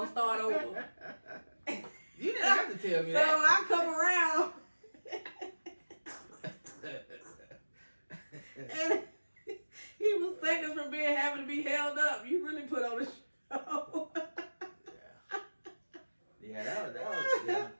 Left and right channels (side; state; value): both; inverted; correlation -1.00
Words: start over. You didn't have to tell me so that. So I come around. And he was seconds from having to be held up. You really put on a show. Yeah, that was yeah.